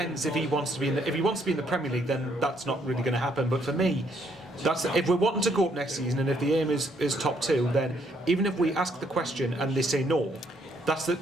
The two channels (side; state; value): both; normal; correlation 0.70